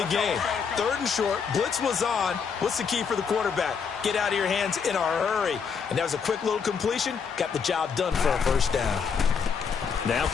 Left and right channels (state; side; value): quieter; right; 6.2 dB